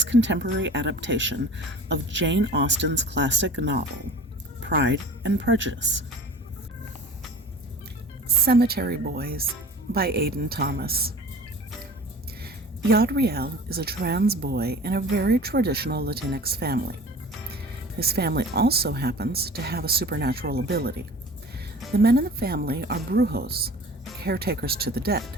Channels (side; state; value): both; normal; correlation 0.41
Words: contemporary adaptation of Jane Austen's classic novel, Pride and Prejudice. Cemetery Boys by Aiden Thomas. Yadriel is a trans boy in a very traditional Latinx family. His family also happens to have a supernatural ability. The men in the family are brujos, caretakers to the dead.